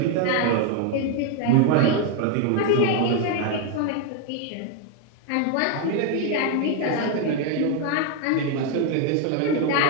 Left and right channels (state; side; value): different; both; correlation 0.01